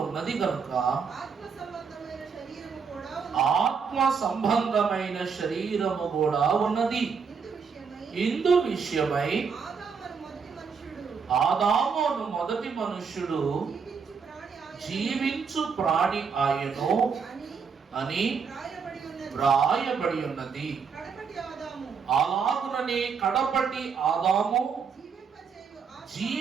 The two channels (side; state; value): left; quieter; 5.9 dB